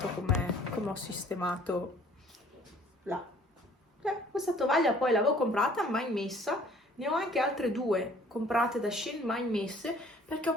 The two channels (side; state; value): both; normal; correlation 0.56